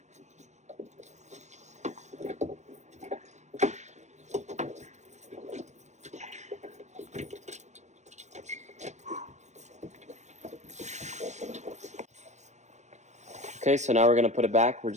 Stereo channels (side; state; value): left; late; 0.34 ms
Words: Okay, so now we're going to put it back. We're